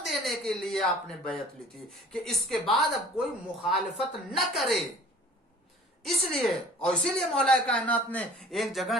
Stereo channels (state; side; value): normal; both; correlation 0.48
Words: دینے کے لیے آپ نے بیعت لی تھی کہ اس کے بعد اب کوئی مخالفت نہ کرے۔ اس لیے، اور اسی لیے مولا کائنات نے ایک